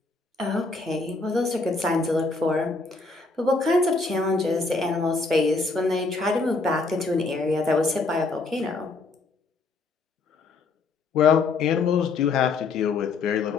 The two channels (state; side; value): quieter; right; 3.9 dB